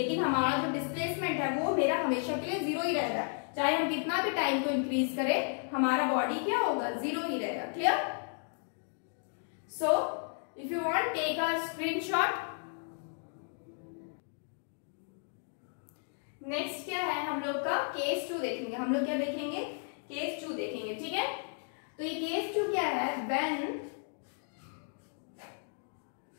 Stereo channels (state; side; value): silent; right; 55 dB below the other